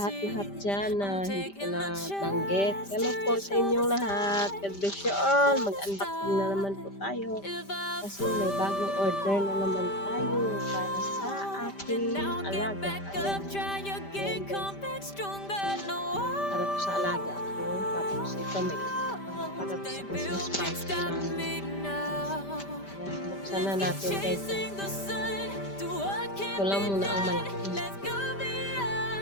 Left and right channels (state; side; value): late; right; 5.1 ms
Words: dyan na hindi ko na banggit. Hello po sa inyong lahat. God bless you all. Mag-unboxing na naman po tayo. Kasi may bagong order na naman tayo para sa ating alaga. Ayan. Ayan guys. Para po sa alaga ko. Tapos ito may para po sa Christmas party namin. Ayan. Buksan na natin guys. Ito lang muna ang malaki.